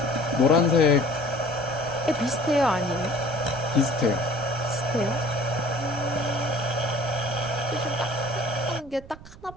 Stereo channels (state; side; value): noise; right; rumble, 18 dB below the sound